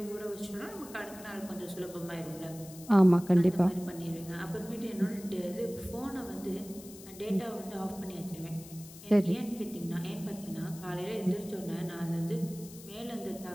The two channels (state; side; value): noise; left; hiss, 17 dB below the sound